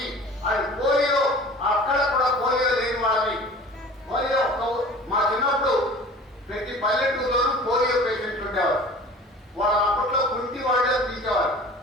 అది పోలియో, అక్కడ కూడా పోలియో లేని వాళ్ళని, పోలియో మా చిన్నప్పుడు ప్రతి పల్లెటూరులోనూ పోలియో పేషెంట్లు ఉండేవారు. వాళ్ళ అప్పట్లో కుంటి వాళ్ళని తీసేవారు.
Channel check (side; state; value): both; normal; correlation 0.43